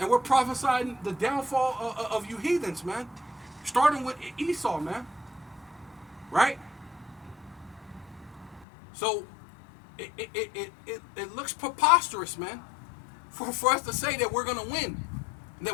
we're prophesying the downfall of you heathens, man. Starting with Esau, man. Right? So it looks preposterous, man, for us to say that we're going to win and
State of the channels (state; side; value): drops out; right; at 8.7 s